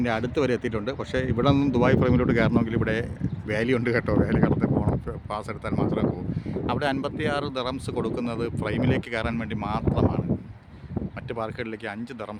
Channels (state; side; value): identical; both; correlation 1.00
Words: അടുത്ത് വരെ എത്തിയിട്ടുണ്ട്. പക്ഷേ ഇവിടെ നിന്നും ദുബായ് ഫ്രൈമിലോട്ട് കയറണമെങ്കിൽ ഇവിടെ വാലി ഉണ്ട് കേട്ടോ. വാലി കടന്ന് പോകണം, പാസ് എടുത്താൽ മാത്രമേ പോകൂ. അവിടെ 56 ദിറംസ് കൊടുക്കുന്നത് ഫ്രൈമിലേക്ക് കയറാൻ വേണ്ടി മാത്രമാണ്. മറ്റ് പാർക്കുകളിലേക്ക് 5